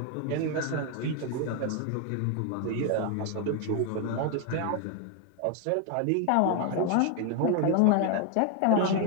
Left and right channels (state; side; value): different; both; correlation 0.01